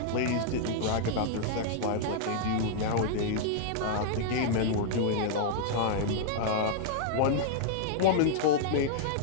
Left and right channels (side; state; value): both; different; correlation -0.01